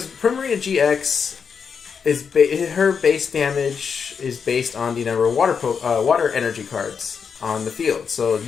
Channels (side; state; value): right; quieter; 6.3 dB